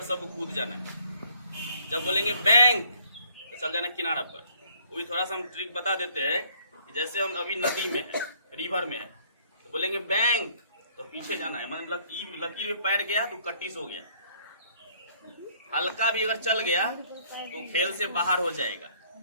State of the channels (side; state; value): both; inverted; correlation -0.62